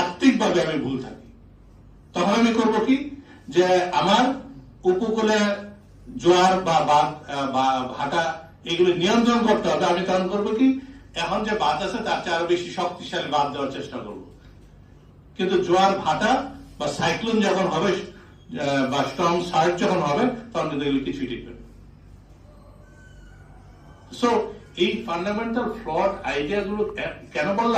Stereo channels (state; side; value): identical; both; correlation 1.00